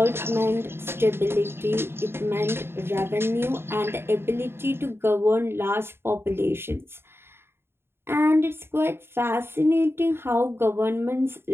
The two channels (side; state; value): left; late; 0.11 ms